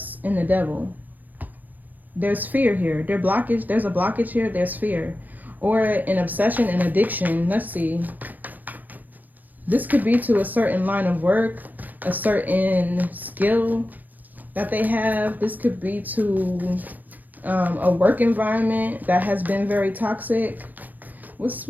and the Devil. There's fear here. There's a blockage here. There's fear. Or an obsession and addiction. Let's see. This could be to a certain line of work, a certain skill that they have. This could be to a work environment that has been very toxic. What's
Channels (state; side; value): late; left; 0.083 ms